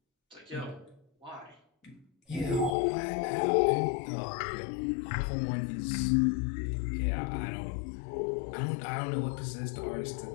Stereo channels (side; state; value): right; drops out; at 2.8 s